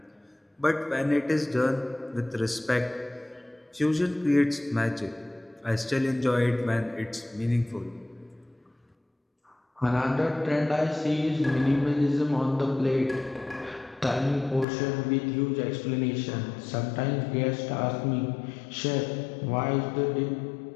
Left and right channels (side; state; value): right; drops out; at 14.7 s